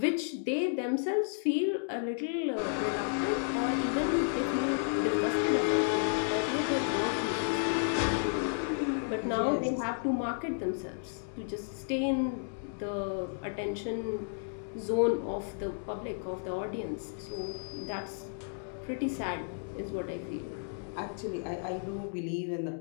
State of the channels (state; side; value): silent; right; digital silence